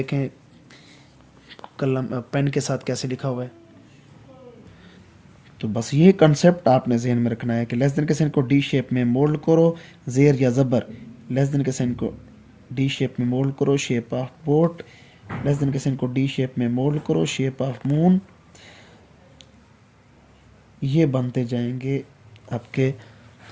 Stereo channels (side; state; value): both; identical; correlation 1.00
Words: कलम पेन के साथ कैसे लिखा हुआ है। तो बस ये कंसेप्ट आपने जहन में रखना है कि लेस देन के साइन को डी शेप में मोल्ड करो, जेर या ज़बर लेस देन के साइन को डी शेप में मोल्ड करो, shape of boat less than के साइन को डी शेप में मोल्ड करो, शेप ऑफ मून। ये बनते जाएंगे आपके